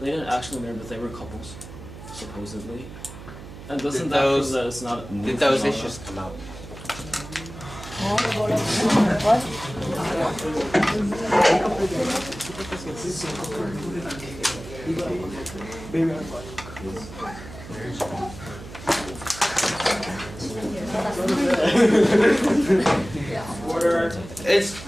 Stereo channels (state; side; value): noise; right; hum, 14 dB below the sound